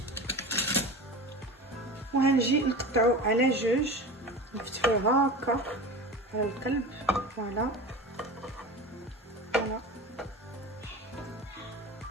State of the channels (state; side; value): normal; both; correlation 0.32